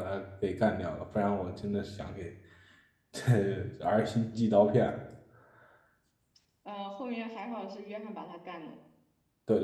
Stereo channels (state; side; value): identical; both; correlation 1.00